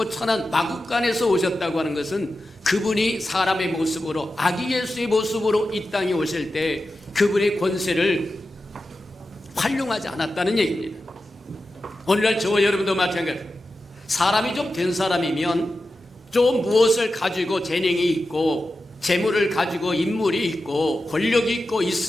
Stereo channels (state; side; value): normal; both; correlation 0.92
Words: 천한 마국간에서 오셨다고 하는 것은 그분이 사람의 모습으로 아기 예수의 모습으로 이 땅에 오실 때 그분의 권세를 활용하지 않았다는 얘기입니다. 오늘날 저와 여러분도 마찬가지. 사람이 좀 된 사람이면 좀 무엇을 가지고 재능이 있고 재물을 가지고 인물이 있고 권력이 있고